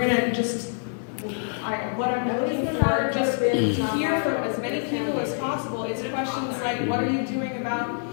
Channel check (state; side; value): silent; right; 61 dB below the other